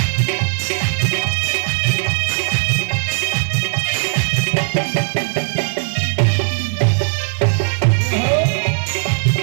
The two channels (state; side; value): silent; left; digital silence